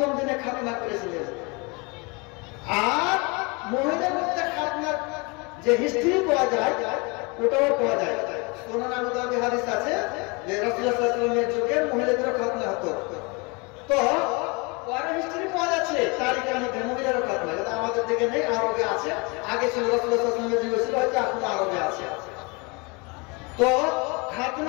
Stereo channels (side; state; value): right; quieter; 29.1 dB